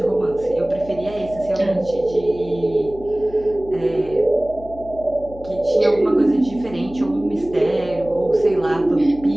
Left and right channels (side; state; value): left; noise; hum, 17 dB below the sound